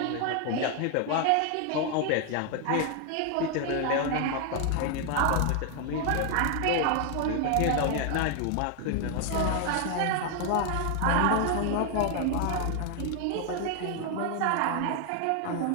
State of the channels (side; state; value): both; different; correlation 0.00